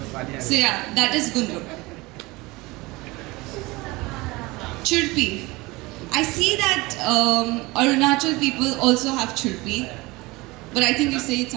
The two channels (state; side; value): quieter; left; 22.4 dB